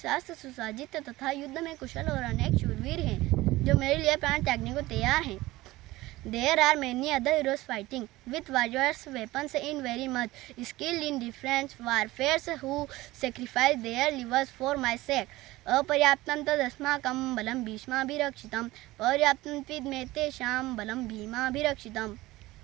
सुसज्जित तथा युद्ध में कुशल और अनेक शूरवीर हैं जो मेरे लिए प्राण त्यागने को तैयार हैं। There are many other heroes fighting with various weapons in very much skilled in different warfares who sacrifice their livers for my sake. अपर्याप्तं तदस्माकं बलं भीष्माभिरक्षितं पर्याप्तं त्विदमे तेषां बलं भीमाभिरक्षितम्।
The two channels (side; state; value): left; quieter; 18.5 dB